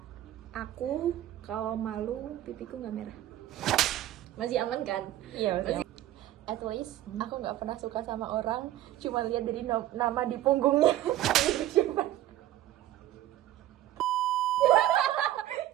aku kalau malu pipiku nggak merah. Masih aman kan? Iya masih. At least aku nggak pernah suka sama orang, cuma lihat dari nama di punggungnya. Siapa?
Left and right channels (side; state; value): left; quieter; 13.7 dB